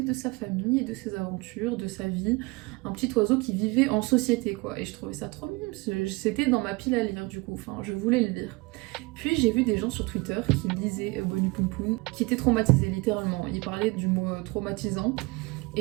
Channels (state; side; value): quieter; left; 24.5 dB